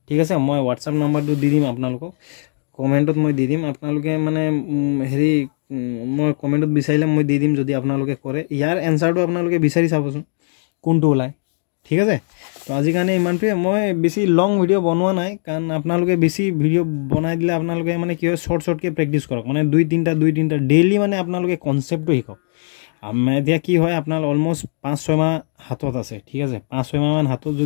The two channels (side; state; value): right; silent; digital silence